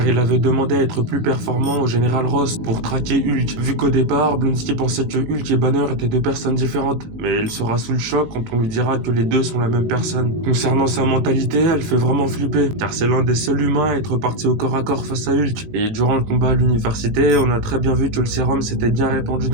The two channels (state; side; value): late; left; 19 ms